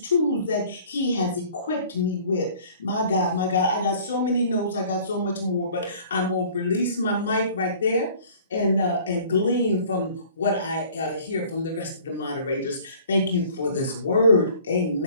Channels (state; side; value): inverted; both; correlation -0.50